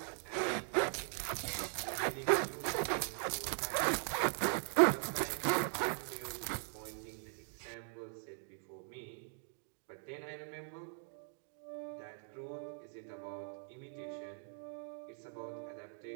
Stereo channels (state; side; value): silent; left; 51 dB below the other